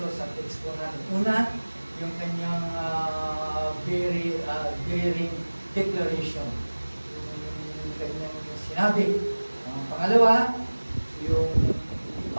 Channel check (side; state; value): both; inverted; correlation -1.00